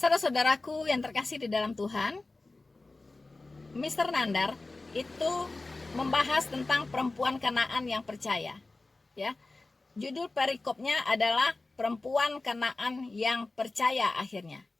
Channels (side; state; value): right; quieter; 3.3 dB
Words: yang terkasih di dalam Tuhan, Mr. Nandar itu membahas tentang perempuan Kanaan yang percaya. Ya. Judul perikopnya adalah perempuan Kanaan yang percaya akhirnya.